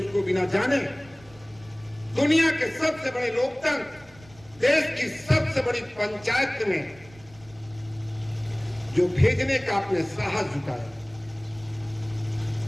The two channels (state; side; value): noise; right; rumble, 25 dB below the sound